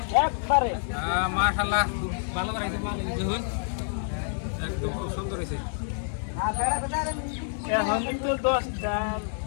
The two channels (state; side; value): silent; right; digital silence